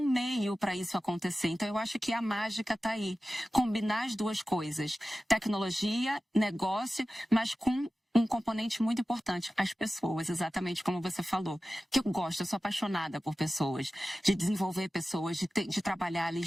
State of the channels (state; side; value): normal; both; correlation 0.95